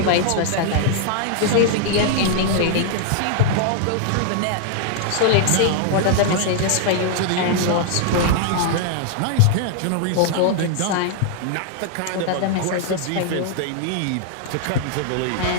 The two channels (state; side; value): different; both; correlation -0.01